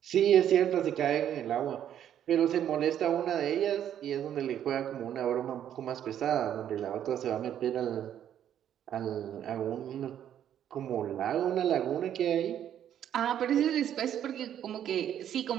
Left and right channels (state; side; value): quieter; left; 10.2 dB